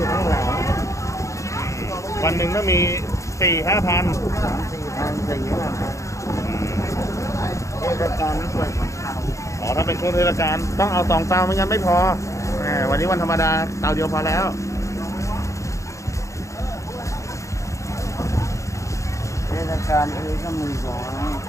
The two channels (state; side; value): late; right; 0.15 ms